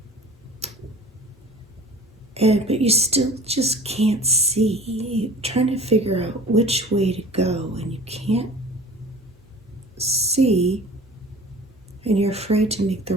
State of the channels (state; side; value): normal; both; correlation 0.42